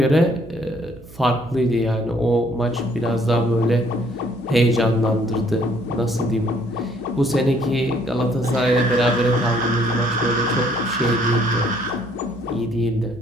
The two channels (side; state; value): right; noise; hum, 20 dB below the sound